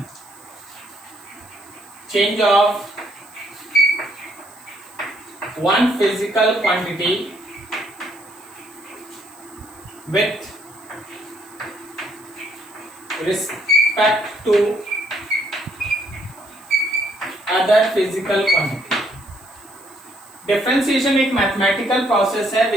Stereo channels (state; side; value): noise; right; hiss, 25 dB below the sound